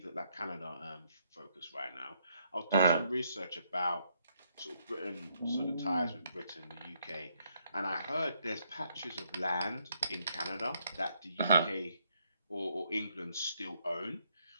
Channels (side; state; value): both; inverted; correlation -0.74